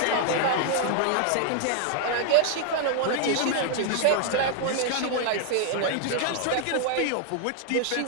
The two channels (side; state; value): both; different; correlation 0.00